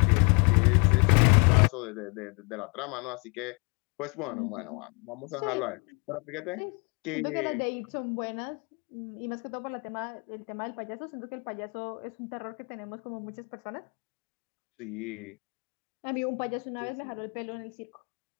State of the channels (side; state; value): right; quieter; 33.8 dB